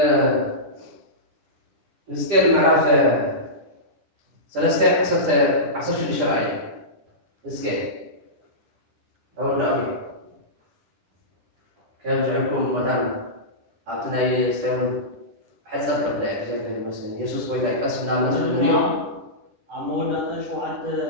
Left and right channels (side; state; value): left; late; 10 ms